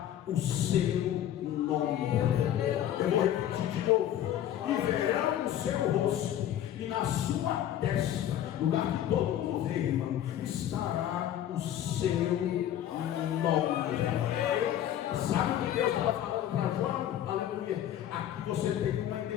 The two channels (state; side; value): quieter; right; 11.3 dB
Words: o seu nome. Eu vou repetir de novo: e verão o seu rosto, e na sua testa, lugar que todo mundo vê, irmão, estará o seu nome. Sabe o que Deus estava falando para João? Aleluia! Aqui você tem uma